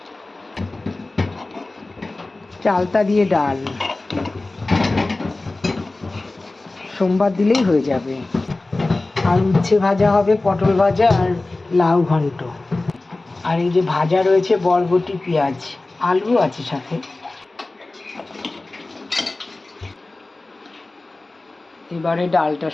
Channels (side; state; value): right; quieter; 3.1 dB